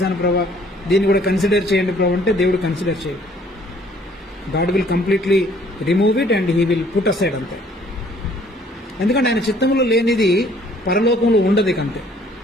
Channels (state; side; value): normal; both; correlation 0.60